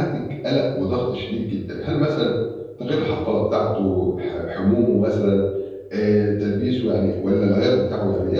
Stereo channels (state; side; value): identical; both; correlation 1.00